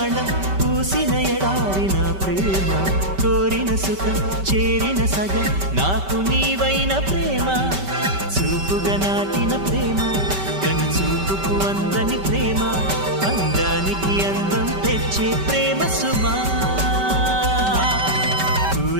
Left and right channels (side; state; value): left; late; 5.2 ms